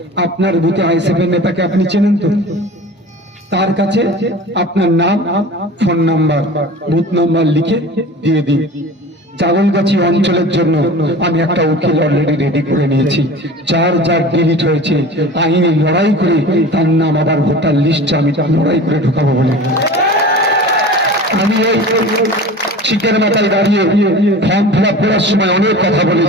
আপনার বুথে আইএসএফ এর নেতাকে আপনি চেনেন তো? তার কাছে আপনার নাম, ফোন নাম্বার, বুথ নাম্বার লিখে দিয়ে দিন। জাগলগাছি অঞ্চলের জন্য আমি একটা উকিল অলরেডি রেডি করে নিয়েছি। যার ডিলিট হয়েছে আইনি লড়াই করে তার নাম আবার ভোটার লিস্টে আমি লড়াই করে ঢোকাবো বলে আমি এই চিকের মাথায় দাঁড়িয়ে ফর্ম ফিল আপ করার সময় অনেক কথা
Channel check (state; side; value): normal; both; correlation 0.37